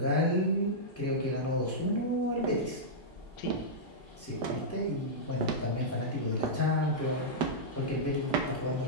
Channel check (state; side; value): normal; both; correlation -0.10